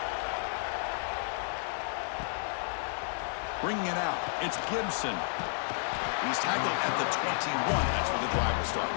Bringing it out, it's Gibson. And he's tackled at the 21. That's where the drive will start.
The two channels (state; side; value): silent; right; digital silence